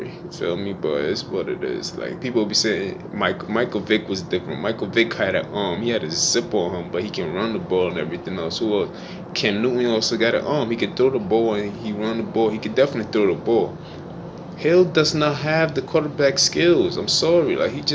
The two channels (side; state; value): both; identical; correlation 1.00